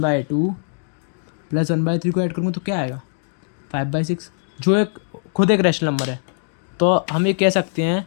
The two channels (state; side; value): silent; right; digital silence